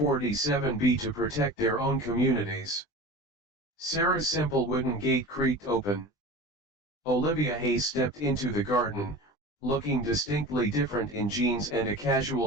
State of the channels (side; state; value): right; late; 20 ms